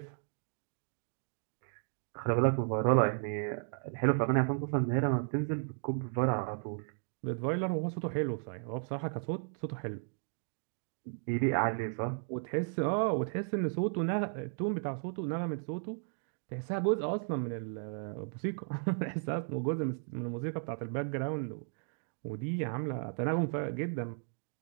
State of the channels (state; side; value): silent; left; 55 dB below the other